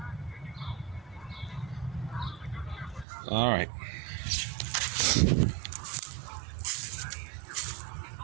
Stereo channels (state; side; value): drops out; left; at 3.1 s